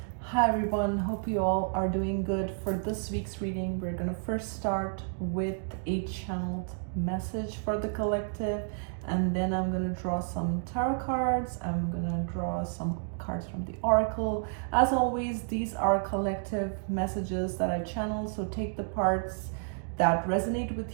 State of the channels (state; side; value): silent; left; digital silence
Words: Hi everyone, hope you all are doing good. For this week's reading, we're going to first start with a channeled message for the collective, and then I'm going to draw some tarot cards. I'm going to draw some cards from the oracle. As always, these are collective messages that I channel, so take the parts that resonate